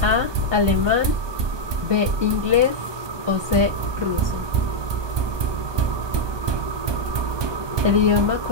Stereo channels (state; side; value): late; left; 1.2 ms